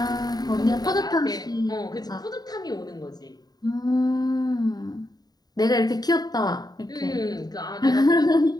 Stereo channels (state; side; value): late; right; 0.19 ms